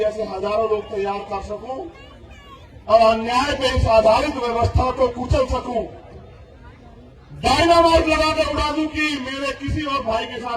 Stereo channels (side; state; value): both; identical; correlation 1.00